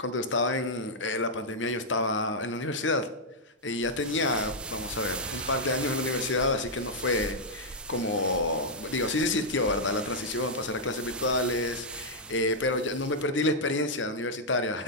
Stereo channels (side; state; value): both; normal; correlation -0.05